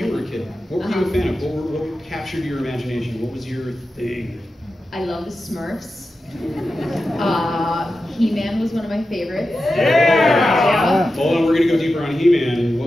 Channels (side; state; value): both; normal; correlation 0.92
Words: were a kid, what were you a fan of? What captured your imagination? What was your thing? I love the Smurfs. He-Man was one of my favorites. Yeah! Hold on, we're gonna go deeper on He-Man.